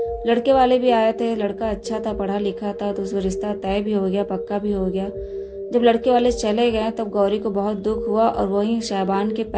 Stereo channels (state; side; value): identical; both; correlation 1.00